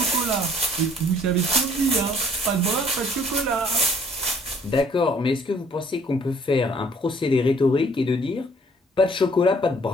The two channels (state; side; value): normal; both; correlation 0.59